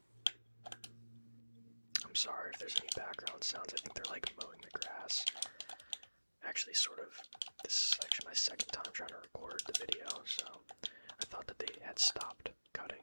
I'm sorry if there's any background sounds. I think they're like mowing the grass. Actually, sort of, this is actually my second time trying to record the video, so I thought that they had stopped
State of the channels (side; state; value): both; inverted; correlation -1.00